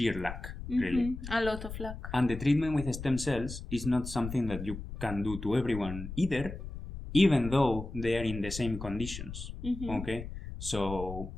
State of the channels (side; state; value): left; noise; rumble, 9 dB below the sound